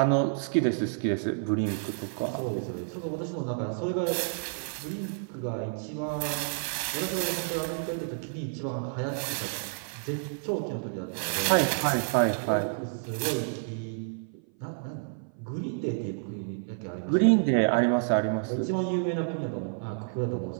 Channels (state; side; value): silent; left; 56 dB below the other